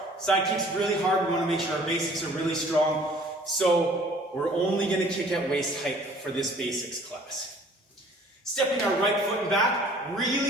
Side kick's really hard. We wanna make sure our basics are really strong. So we're only gonna kick at waist height for this basics class. Stepping our right foot and back,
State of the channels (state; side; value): normal; both; correlation 0.53